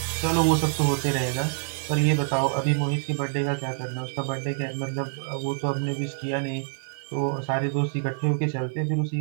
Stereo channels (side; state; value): left; silent; 61 dB below the other